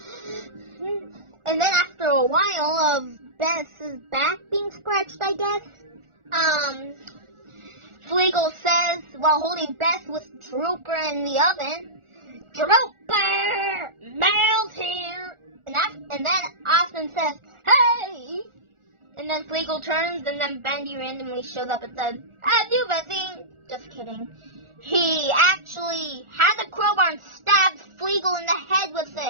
And then after a while of Beth's back being scratched, I guess, Fleagle says, while holding Beth with Drooper in the oven, "Drooper, Mel's here!" And then Austin says, "Hey!" And then Fleagle turns, and then Bendy randomly shows up and says, "Have you seen?" Just kidding. He actually had the crowbar and stabs Fleagle in the head with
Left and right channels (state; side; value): late; left; 1.4 ms